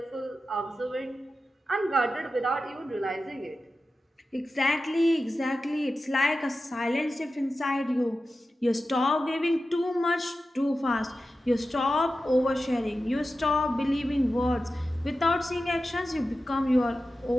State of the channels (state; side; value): normal; both; correlation 0.93